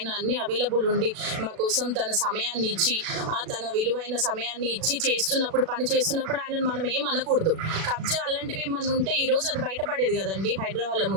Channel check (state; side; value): late; left; 37 ms